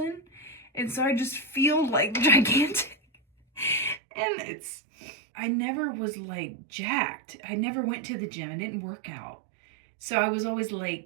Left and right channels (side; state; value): left; drops out; at 4.0 s